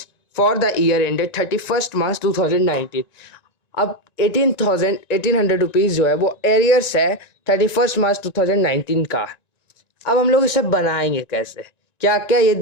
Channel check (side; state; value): right; late; 1.9 ms